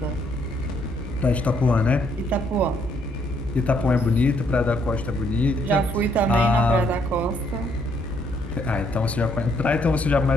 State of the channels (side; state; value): both; normal; correlation 0.70